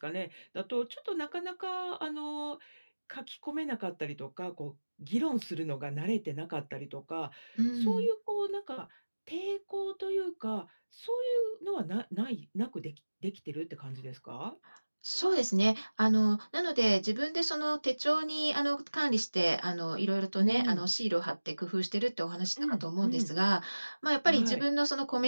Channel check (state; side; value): inverted; both; correlation -1.00